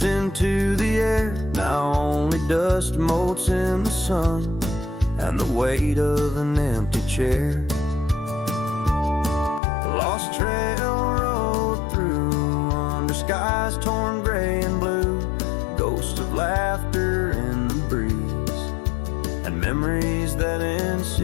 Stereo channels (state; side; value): drops out; right; at 9.6 s